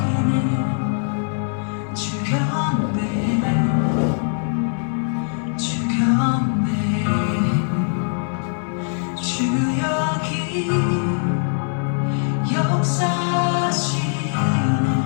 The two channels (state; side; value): silent; right; 65 dB below the other